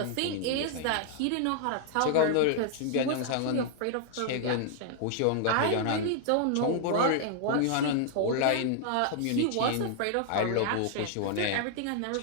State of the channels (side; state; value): both; different; correlation 0.00